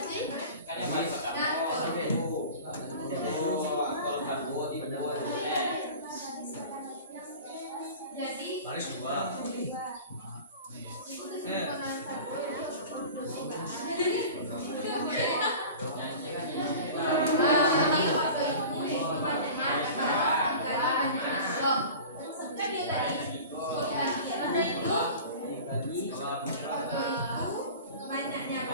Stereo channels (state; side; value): inverted; both; correlation -0.38